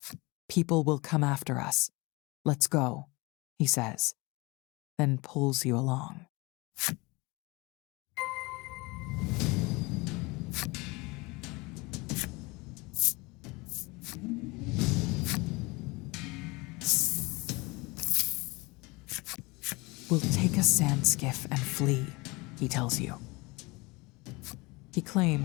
"People will come after us. Let's go," he says, then pulls you along. "We'll take a sand skiff and flee," he tells you. He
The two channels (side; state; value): right; quieter; 24.8 dB